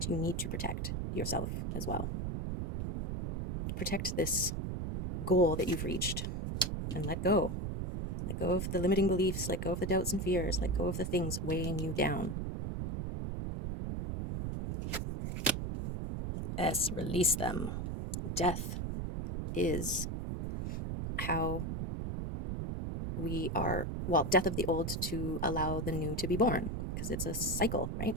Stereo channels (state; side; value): noise; right; rumble, 3 dB below the sound